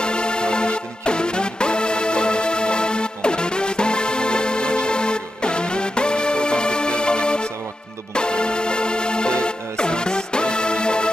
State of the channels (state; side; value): normal; both; correlation 0.88